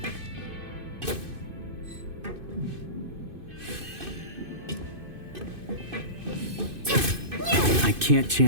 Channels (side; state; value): left; late; 2.5 ms